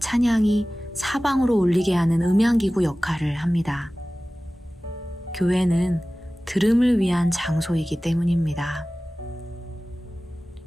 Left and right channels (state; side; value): normal; both; correlation 0.97